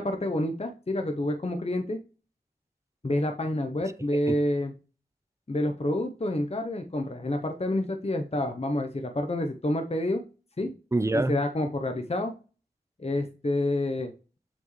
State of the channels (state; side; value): normal; both; correlation 0.80